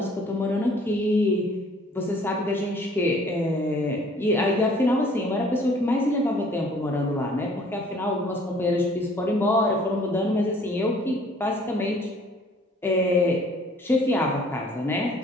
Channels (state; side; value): normal; both; correlation 0.56